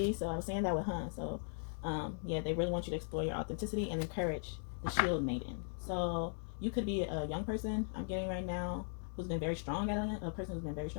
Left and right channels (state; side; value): silent; right; 52 dB below the other